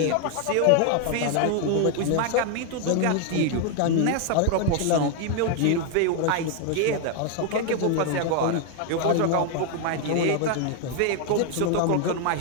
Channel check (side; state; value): both; different; correlation 0.00